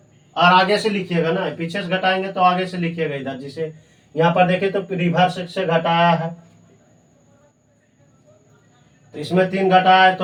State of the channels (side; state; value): both; identical; correlation 1.00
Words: और आगे से लिखिएगा ना, पीछे से घटाएंगे तो आगे से लिखिएगा इधर। जिसे यहाँ पर देखे तो रिवर्स से घटाया है, तो इसमें 3 घटाए